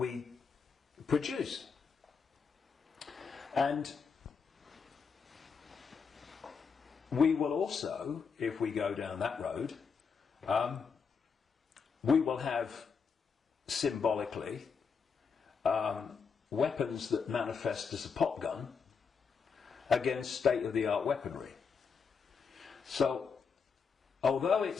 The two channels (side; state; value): right; quieter; 5.7 dB